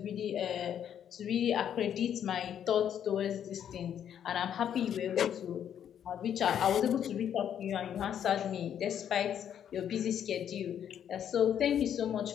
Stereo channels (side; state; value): right; quieter; 9.3 dB